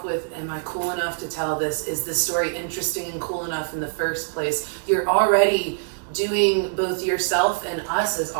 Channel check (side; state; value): left; silent; digital silence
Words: with, am I cool enough to tell this? Is this story interesting and cool enough in the first place? You're already doing both yourself and us as